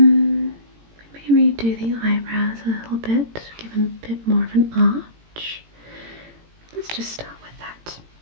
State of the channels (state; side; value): late; left; 18 ms